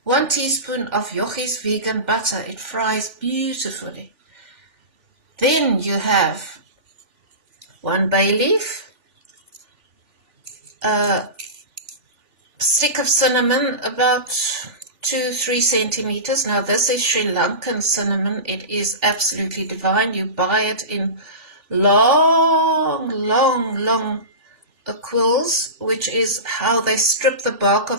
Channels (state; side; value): late; left; 3.4 ms